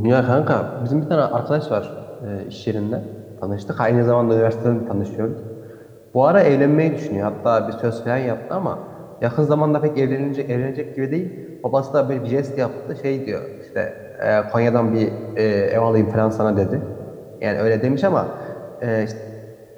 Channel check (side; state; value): both; identical; correlation 1.00